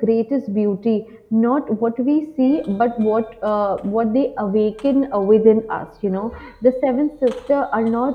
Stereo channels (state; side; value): identical; both; correlation 1.00